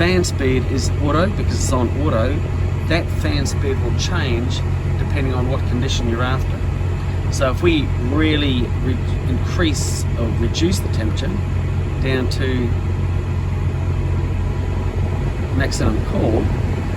speed is auto because it's on auto. That fan speed will change depending on what condition you're after. So if we really increase or reduce the temperature down to maximum cool,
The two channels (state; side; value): identical; both; correlation 1.00